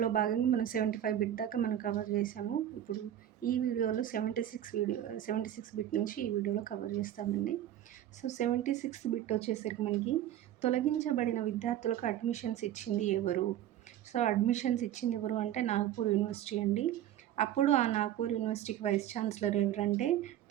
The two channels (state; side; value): quieter; left; 11.7 dB